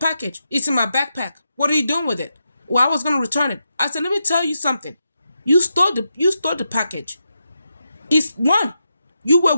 It's in my backpack. What are you doing with it? Well, I was going to return it. I said, let me tell you something. You stole the package. It's one, you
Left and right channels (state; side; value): inverted; both; correlation -0.86